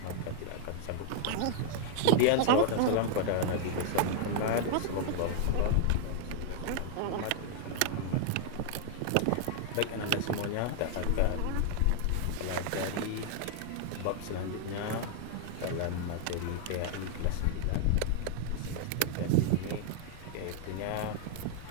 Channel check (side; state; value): both; different; correlation -0.01